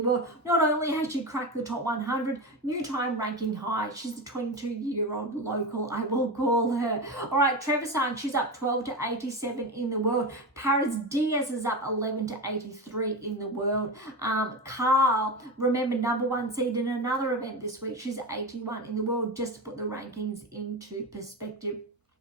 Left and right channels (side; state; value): both; normal; correlation 0.20